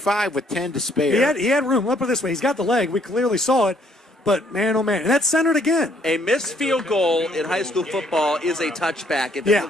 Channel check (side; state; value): both; normal; correlation 0.66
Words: with 10 to spare. He had room. Let's put it this way. He's got the leg. We clearly saw it. But, man, oh, man. And that's centered again. A missed field goal in high school football is a touchback if Yeah.